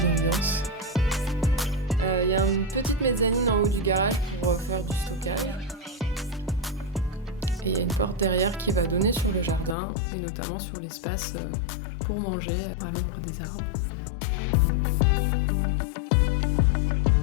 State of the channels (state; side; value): drops out; right; at 9.8 s